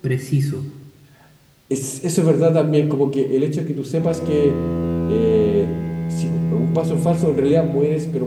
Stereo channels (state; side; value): identical; both; correlation 1.00